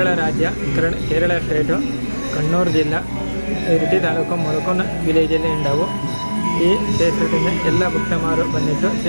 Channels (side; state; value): both; inverted; correlation -1.00